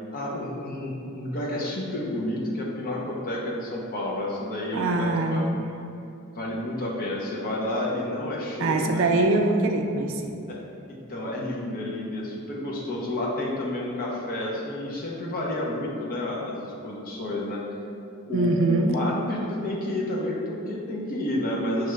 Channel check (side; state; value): both; normal; correlation 0.35